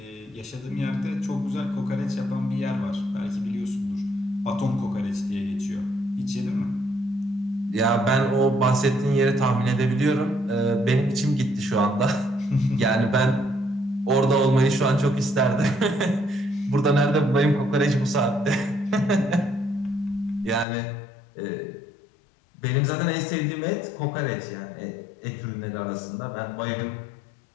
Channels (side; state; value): right; drops out; at 20.7 s